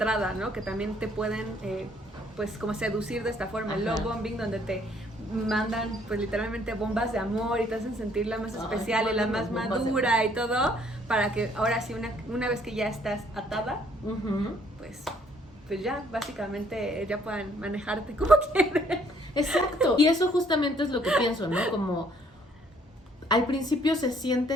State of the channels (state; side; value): normal; both; correlation 0.64